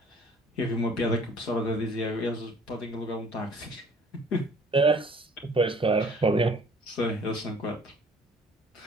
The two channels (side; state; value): both; normal; correlation 0.54